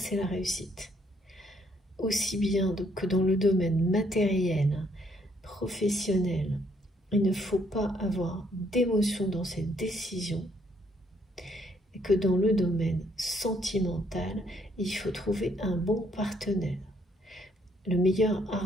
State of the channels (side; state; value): both; normal; correlation 0.69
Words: la réussite. Aussi bien que dans le domaine matériel, professionnel, il ne faut pas avoir d'émotion dans ses décisions, et que dans le domaine sentimental, il faut trouver un bon partenaire, le meilleur